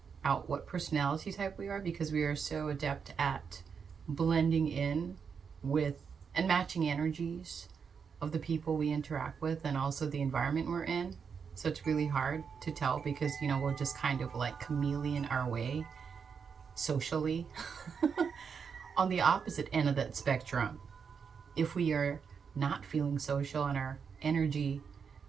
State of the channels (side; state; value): left; quieter; 6.3 dB